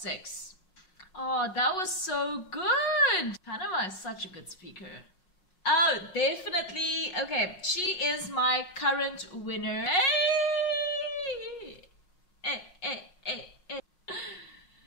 Oh, that was so good. Panama is such a good speaker. Oh, definitely. Okay, she is my current winner. Hey.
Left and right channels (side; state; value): right; late; 5.5 ms